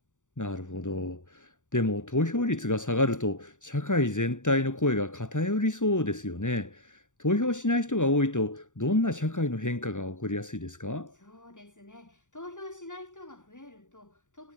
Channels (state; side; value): late; right; 0.86 ms